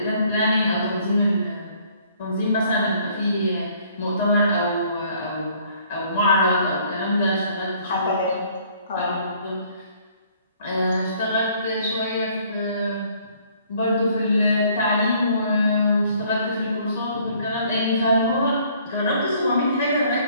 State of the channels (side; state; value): both; inverted; correlation -0.60